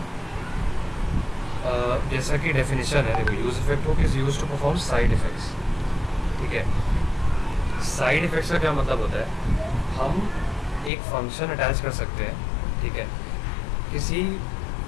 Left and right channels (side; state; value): right; drops out; at 10.9 s